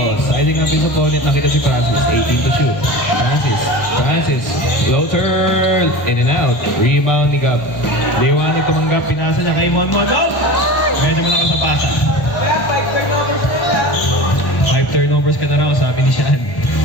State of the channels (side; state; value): right; late; 1.0 ms